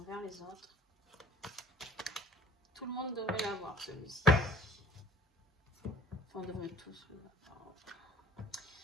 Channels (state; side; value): normal; both; correlation 0.53